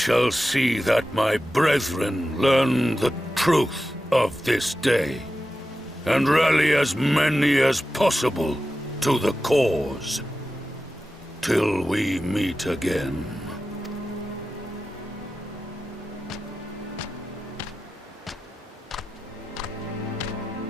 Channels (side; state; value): both; normal; correlation 0.93